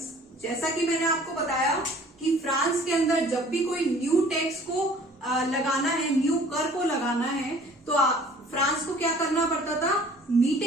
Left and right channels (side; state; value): both; normal; correlation 0.52